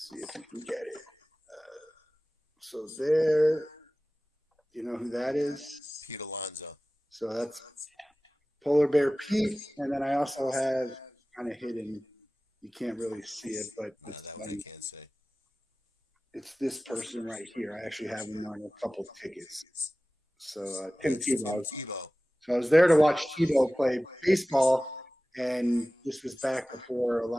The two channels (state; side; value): normal; both; correlation 0.97